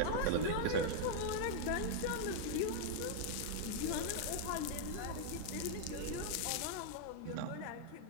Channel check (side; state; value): both; different; correlation -0.01